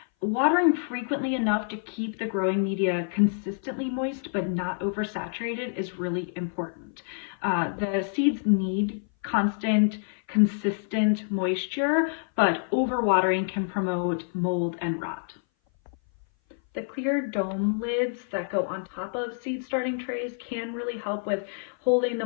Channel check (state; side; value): silent; right; 58 dB below the other